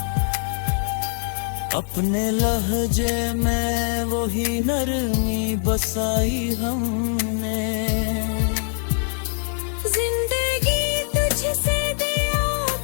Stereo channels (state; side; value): silent; right; 63 dB below the other